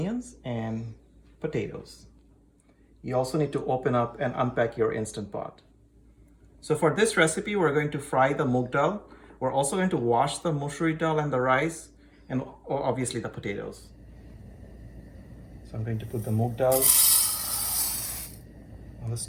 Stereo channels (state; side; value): identical; both; correlation 1.00